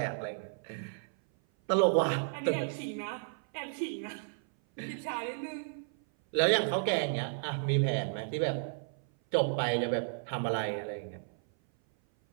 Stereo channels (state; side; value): silent; left; 56 dB below the other